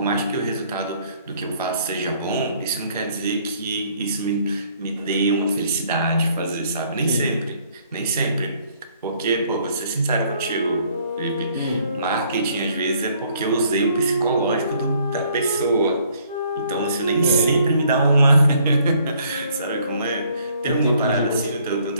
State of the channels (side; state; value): both; inverted; correlation -0.63